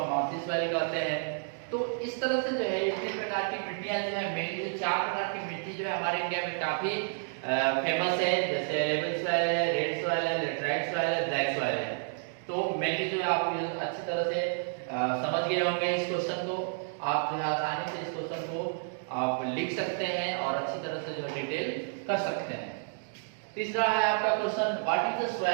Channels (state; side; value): silent; left; digital silence